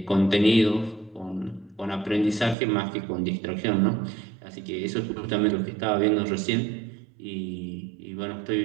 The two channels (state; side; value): drops out; left; at 2.6 s